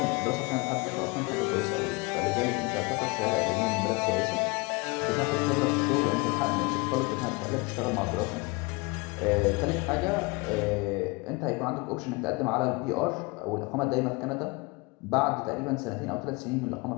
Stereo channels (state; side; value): quieter; right; 27.3 dB